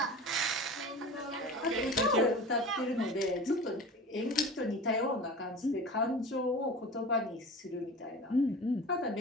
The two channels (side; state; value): both; normal; correlation 0.35